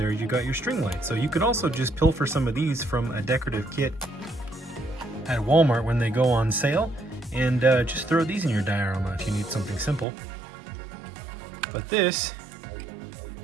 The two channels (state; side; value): drops out; left; at 10.1 s